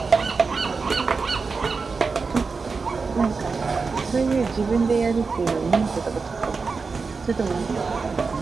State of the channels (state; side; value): quieter; left; 4.6 dB